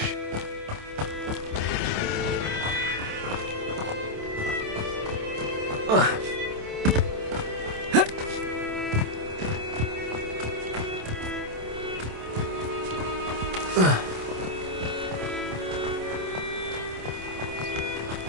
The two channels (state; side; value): late; left; 27 ms